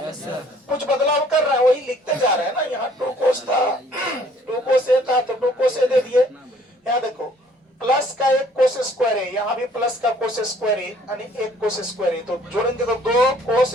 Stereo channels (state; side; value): normal; both; correlation 0.59